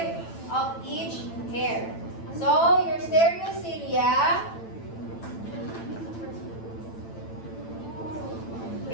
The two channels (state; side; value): late; right; 9.0 ms